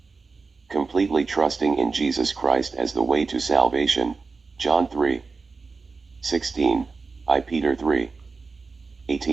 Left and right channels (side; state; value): left; quieter; 4.3 dB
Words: completely trusting in Jesus Christ as the way to salvation, John 3:16, I Peter